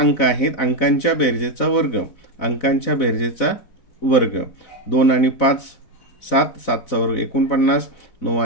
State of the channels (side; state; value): right; late; 4.0 ms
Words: आहेत अंकांच्या बेरजेचा वर्ग, अंकांच्या बेरजेचा वर्ग. 2 आणि 5 7, 7चा वर्ग 49, 9